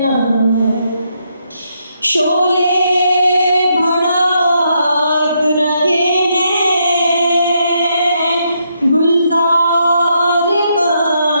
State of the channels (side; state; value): both; inverted; correlation -0.77